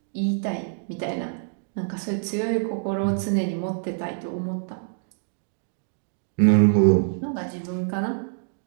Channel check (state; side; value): silent; left; digital silence